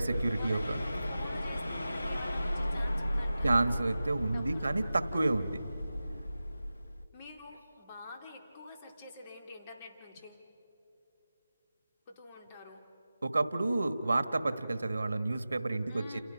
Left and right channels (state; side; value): inverted; both; correlation -0.95